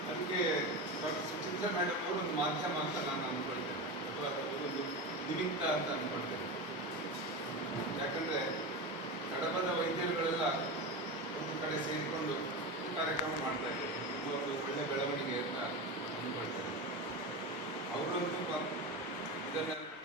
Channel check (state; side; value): normal; both; correlation 0.22